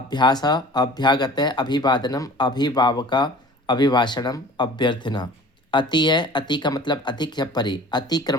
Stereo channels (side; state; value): both; normal; correlation 0.44